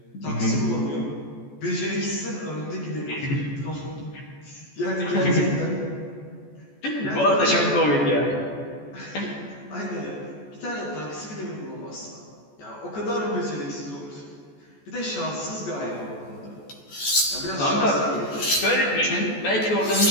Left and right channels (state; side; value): late; right; 14 ms